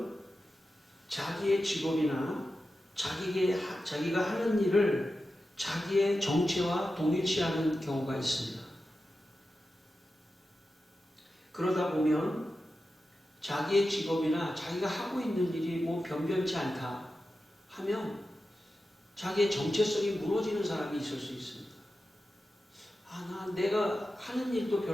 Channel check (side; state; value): both; normal; correlation 0.92